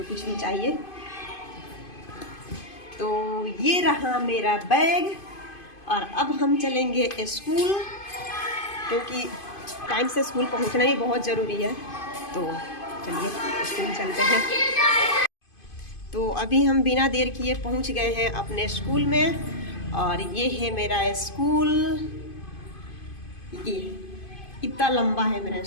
कुछ भी चाहिए। तो ये रहा मेरा बैग और अब हम चलेंगे स्कूल, क्योंकि टाइम से स्कूल पहुँचना भी बहुत ज़रूरी है। तो चलिए स्कूल चलते हैं। तो अभी हम बिना देर किए पहुंच गए हैं अपने स्कूल में और ये है मेरा स्कूल। ये इतना लंबा है मेरा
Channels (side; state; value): right; late; 2.5 ms